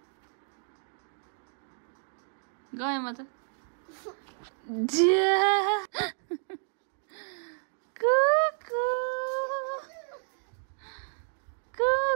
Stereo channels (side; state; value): left; silent; 57 dB below the other